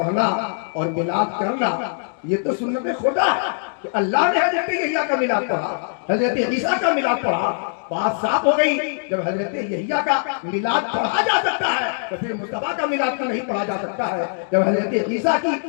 اور میلاد کرنا یہ تو سنت خدا ہے کہ اللہ نے حضرت یحییٰ کا میلاد پڑھا، حضرت عیسیٰ کا میلاد پڑھا. بات صاف ہو گئی. جب حضرت یحییٰ کا میلاد پڑھا جا سکتا ہے تو پھر مصطفیٰ کا میلاد کیوں نہیں پڑھا جا سکتا ہے؟ جب حضرت عیسیٰ کی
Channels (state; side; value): silent; right; digital silence